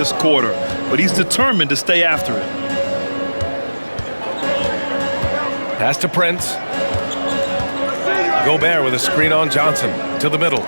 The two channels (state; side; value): inverted; both; correlation -1.00